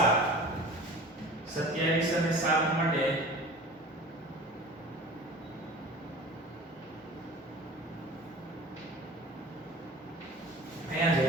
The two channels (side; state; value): both; normal; correlation 0.40